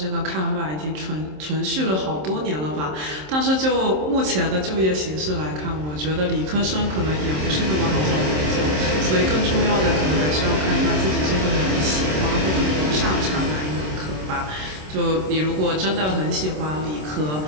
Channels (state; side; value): late; left; 27 ms